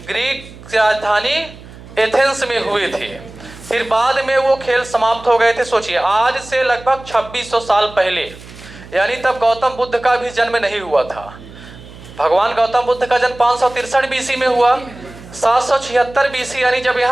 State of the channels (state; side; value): noise; right; hum, 18 dB below the sound